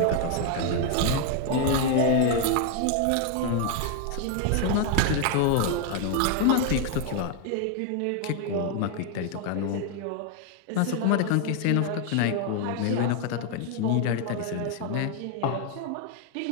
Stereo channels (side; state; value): both; different; correlation 0.00